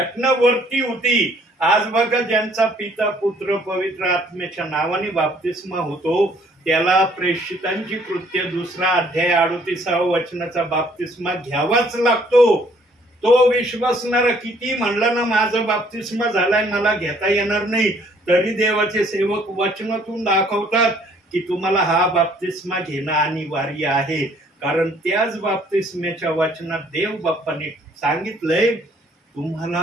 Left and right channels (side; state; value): both; normal; correlation 0.62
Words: वरती होती. आज बघा, ज्यांचा पिता, पुत्र, पवित्र आत्म्याच्या नावाने बाप्तिस्मा होतो, त्याला प्रेषितांची कृत्य 2 अध्याय 38व्या वचनाचा बाप्तिस्मा घ्यावाच लागतो. तो विश्वासणारा किती म्हणलं ना माझं बाप्तिस्मा झालाय मला घेता येणार नाही, तरी देवाचे सेवक वचनातून दाखवतात की तुम्हाला हा बाप्तिस्मा घेणं अनिवार्य आहे. कारण त्याच बाप्तिस्म्याच्या वचनात देव बाप्पाने सांगितलंय